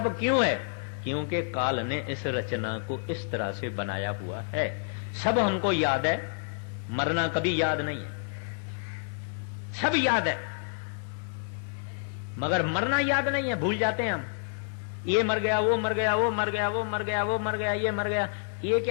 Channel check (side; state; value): right; silent; digital silence